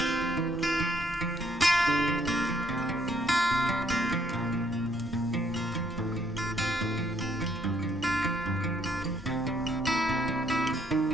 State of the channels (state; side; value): normal; both; correlation 0.68